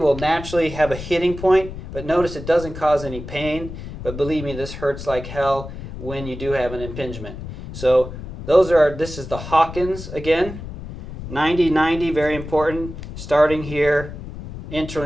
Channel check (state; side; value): noise; left; rumble, 11 dB below the sound